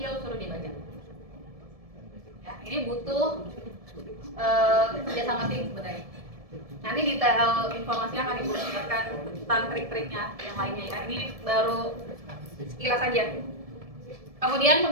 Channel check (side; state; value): left; late; 1.7 ms